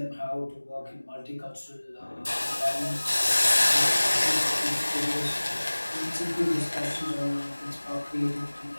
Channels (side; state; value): both; inverted; correlation -1.00